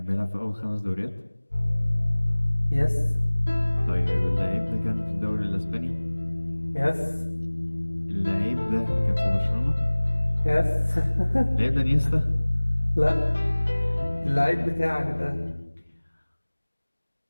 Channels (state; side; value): inverted; both; correlation -1.00